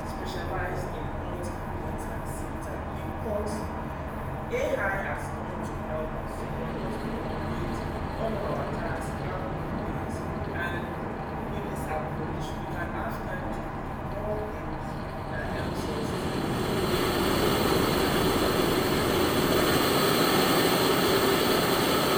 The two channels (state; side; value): identical; both; correlation 1.00